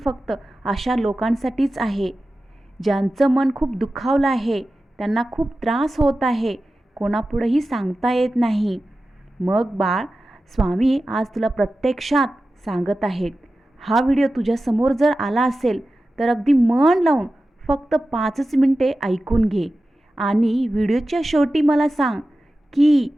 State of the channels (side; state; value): both; normal; correlation 0.94